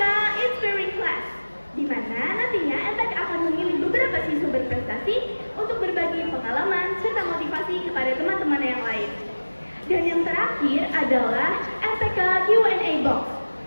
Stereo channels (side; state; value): both; inverted; correlation -1.00